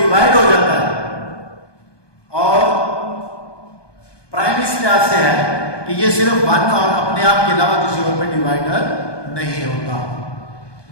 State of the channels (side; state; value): right; late; 1.2 ms